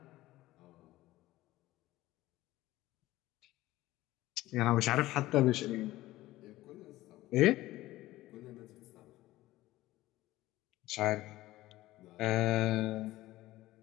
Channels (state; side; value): quieter; right; 16.9 dB